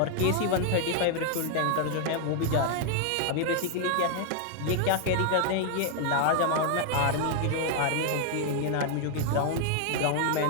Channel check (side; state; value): both; different; correlation 0.00